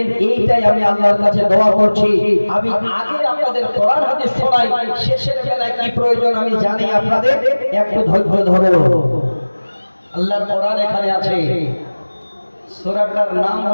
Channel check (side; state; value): both; inverted; correlation -1.00